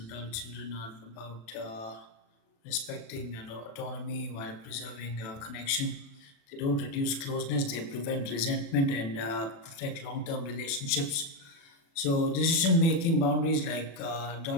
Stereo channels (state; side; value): late; right; 36 ms